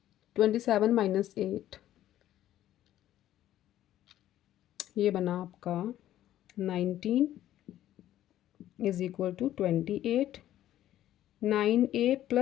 27 माइनस 8, ये बना आपका 19 is equal to 28। 9a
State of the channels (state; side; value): quieter; right; 12.8 dB